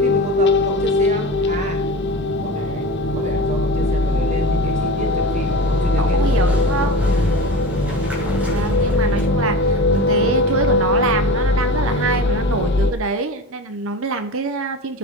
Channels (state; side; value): normal; both; correlation 0.30